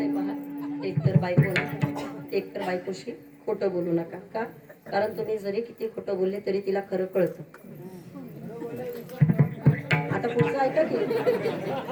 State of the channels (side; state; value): both; identical; correlation 1.00